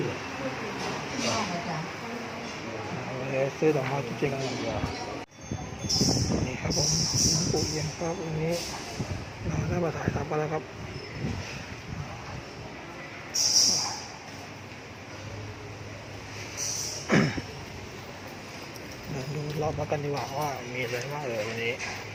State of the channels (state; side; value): identical; both; correlation 1.00